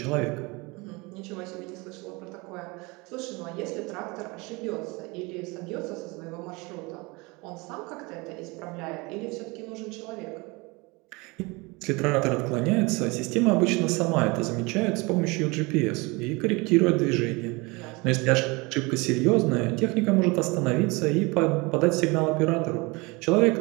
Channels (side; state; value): left; quieter; 25.8 dB